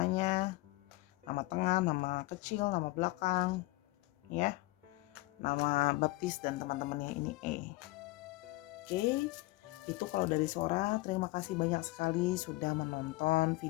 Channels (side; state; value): right; quieter; 20.9 dB